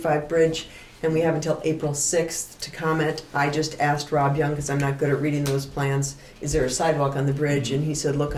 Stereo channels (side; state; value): both; identical; correlation 1.00